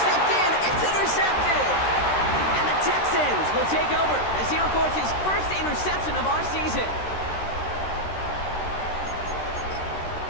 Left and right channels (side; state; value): right; late; 13 ms